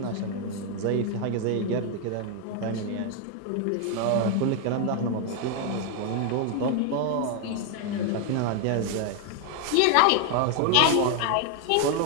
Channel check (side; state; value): both; different; correlation 0.01